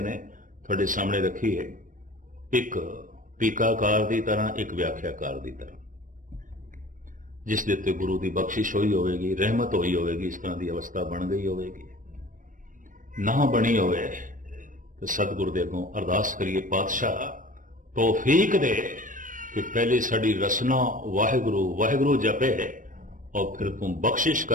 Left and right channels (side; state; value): left; late; 0.38 ms